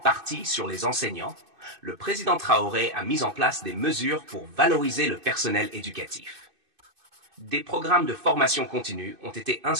partie sur les enseignants, le président Traoré a mis en place des mesures pour valoriser le personnel éducatif. Des programmes de formation continue ont été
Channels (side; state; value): left; late; 2.6 ms